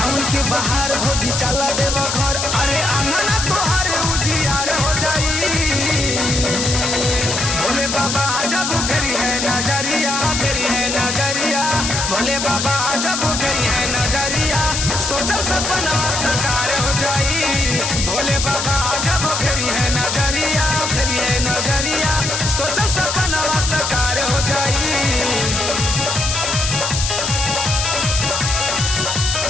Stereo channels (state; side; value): noise; left; hiss, 1 dB below the sound